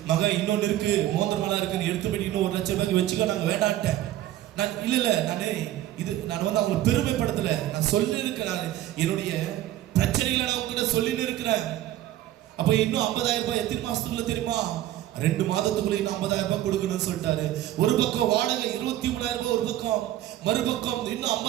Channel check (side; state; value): left; quieter; 13.6 dB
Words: மகன் இன்னொன்னு இருக்கு, மோதிரமெல்லாம் இருக்குன்னு எடுத்து போய் இன்னும் 1 லட்சம் ரூபாய்க்கு வச்சுக்க நாங்க வேண்டான்ட்டேன். நான் இல்ல நான் வந்து அவங்களை பெருமைப்படுத்தல. நான் சொல்லி இருக்கிறேன், என்னுடைய பிரச்சனைகளை நான் உங்ககிட்ட சொல்லிட்டு இருக்கிறேன். அப்ப இன்னும் 50,000 ரூபாய் எத்தனை மாசத்துக்குள்ள தெரியுமா? 2 மாதத்துக்குள்ள இன்னும் 50,000 ரூபாய் கொடுக்கணும்னு சொல்லிட்டாரு. ஒரு பக்கம் வாடகை 23,000 ரூபாய், ஒரு பக்கம் மறுபக்கம் இன்னும்